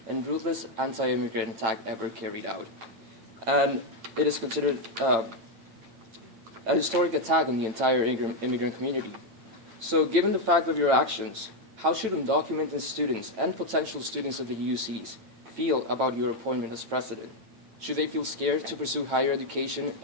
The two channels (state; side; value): late; left; 9.0 ms